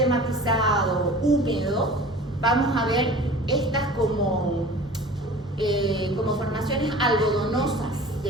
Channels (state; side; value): normal; both; correlation 0.42